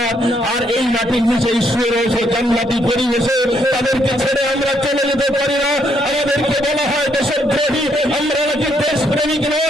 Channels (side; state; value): both; normal; correlation 0.72